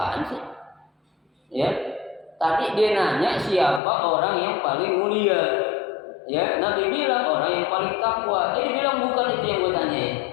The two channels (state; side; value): drops out; right; at 3.8 s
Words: sih? Ya, tadi dia nanya siapa orang yang paling mulia. Ya, Nabi bilang orang yang paling takwa. Dia bilang bukan itu yang gue tanyain.